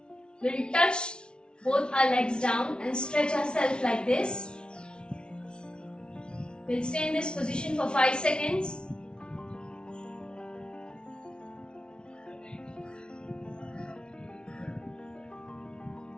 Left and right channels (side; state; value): right; late; 0.056 ms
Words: we'll touch both our legs down and stretch ourselves like this. We'll stay in this position for 5 seconds.